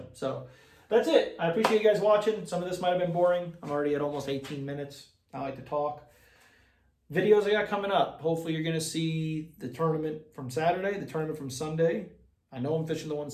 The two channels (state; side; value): identical; both; correlation 1.00